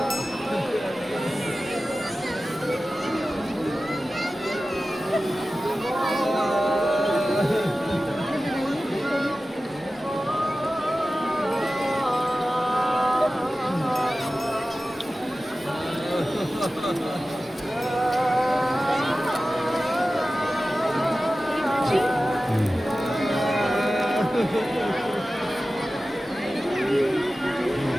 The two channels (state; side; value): normal; both; correlation 0.95